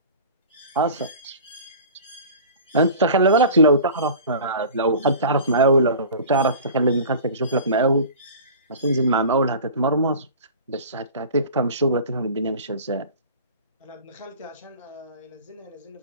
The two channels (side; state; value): both; inverted; correlation -0.39